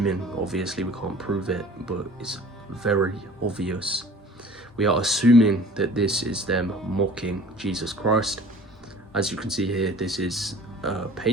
obviously we can't prove it, but it's very obvious. We are assuming that this is them mocking Jesus Christ. As you can see here, this is a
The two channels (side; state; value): both; normal; correlation 0.47